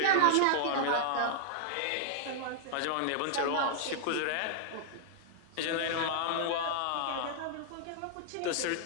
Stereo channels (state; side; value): different; both; correlation -0.01